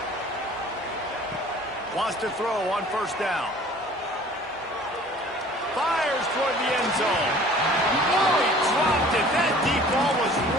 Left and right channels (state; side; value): normal; both; correlation 0.49